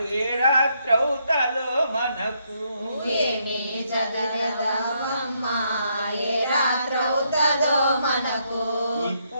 ఏ రాత్రవుతాదో మనకు ఏమి చదరదమ్మా ఏ రాత్రవుతుందో మనకు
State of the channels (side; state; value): both; inverted; correlation -0.75